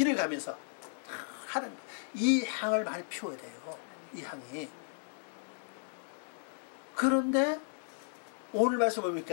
가면서 하는, 이 향을 많이 피워야 돼요. 이 향이. 그런데 오늘 말씀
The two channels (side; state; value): right; silent; 55 dB below the other